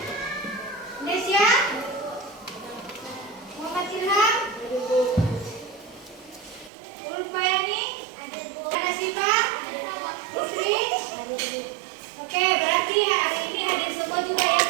Nesya, Muhammad Ilham, Ulfayani, Ana Siva, Putri. Oke, berarti hari ini hadir semua juga ya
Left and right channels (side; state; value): left; drops out; at 6.7 s